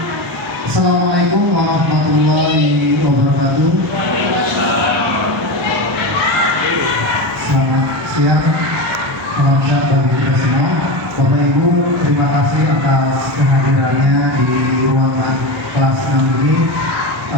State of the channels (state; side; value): normal; both; correlation 0.21